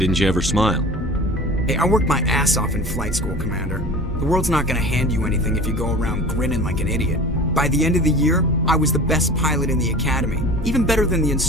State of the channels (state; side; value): normal; both; correlation 0.38